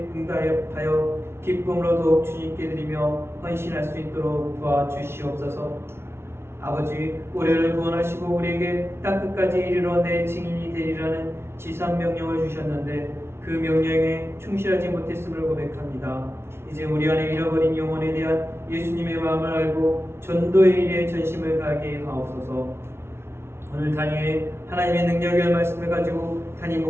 응답하여 기쁨으로 더욱 주님께 드리며 헌신할 수 있도록 도와주시옵소서. 아버지, 우리를 구원하시고 우리에게 땅끝까지 이르러 내 증인이 되리라는 지상 명령을 주셨는데 그 명령에 충실하지 못했음을 고백합니다. 이제 우리 안에 잃어버린 영혼에 대한 예수님의 마음을 알고 전도의 일에 전심을 다하게 하옵소서. 오늘 단위에 하나님의 능력의 말씀을 가지고 담임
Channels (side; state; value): left; late; 0.12 ms